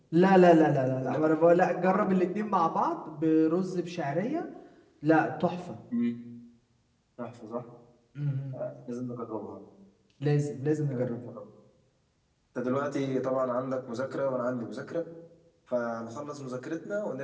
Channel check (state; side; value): identical; both; correlation 1.00